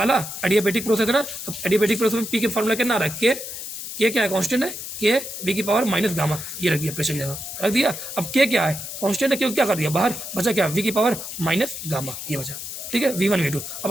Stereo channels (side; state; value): left; noise; hiss, 8 dB below the sound